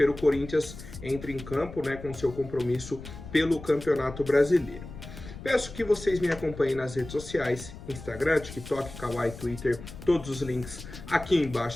o Corinthians entra em campo, né, com seu compromisso pelo Campeonato Brasileiro. Peço que vocês me acompanhem nas redes sociais, Instagram, TikTok, Kawaii, Twitter, todos os links aqui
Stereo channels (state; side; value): noise; left; rumble, 13 dB below the sound